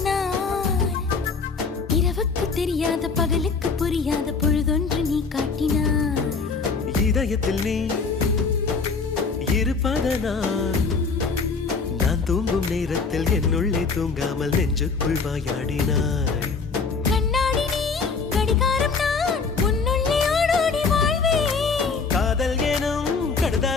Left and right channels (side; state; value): right; quieter; 4.8 dB